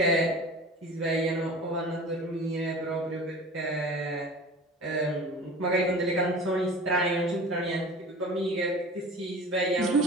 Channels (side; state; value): both; normal; correlation 0.39